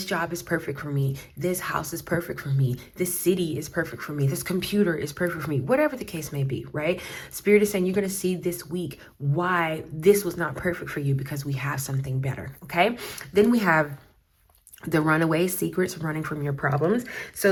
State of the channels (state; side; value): identical; both; correlation 1.00